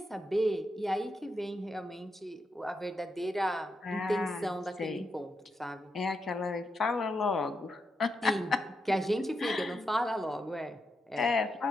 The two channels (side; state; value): both; normal; correlation 0.84